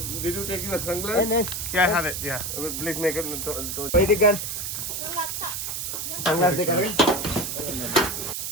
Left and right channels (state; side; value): noise; right; hiss, 4 dB below the sound